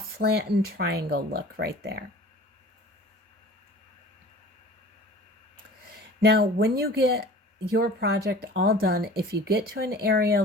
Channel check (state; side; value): normal; both; correlation 0.43